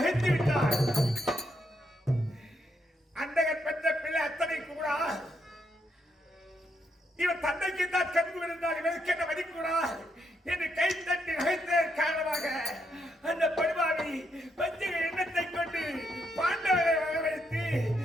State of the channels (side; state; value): both; normal; correlation 0.78